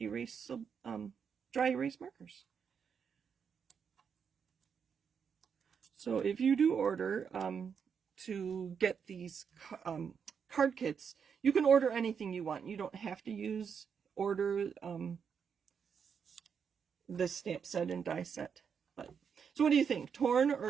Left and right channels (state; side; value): quieter; left; 6.8 dB